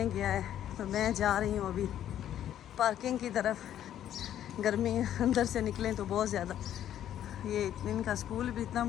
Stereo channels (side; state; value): right; quieter; 11.0 dB